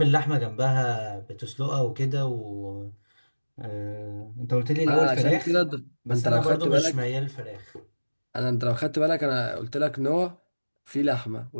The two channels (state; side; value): inverted; both; correlation -1.00